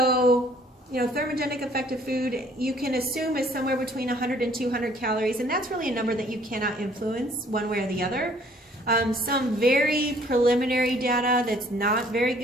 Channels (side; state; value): both; normal; correlation 0.59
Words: thermogenic effective food you can assume is somewhere between 100 and 200 calories, and that's really a number that you cannot influence one way or the other. Some very preliminary data that's not very